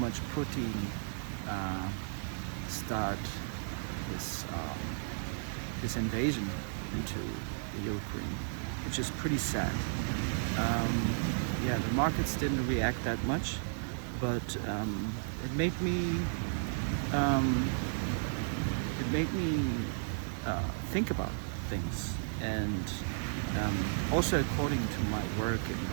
Putin start this invasion into the Ukraine, which is pretty sad. Yeah, the markets didn't react that much, but it made me think about things, and also according to my work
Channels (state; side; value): silent; left; digital silence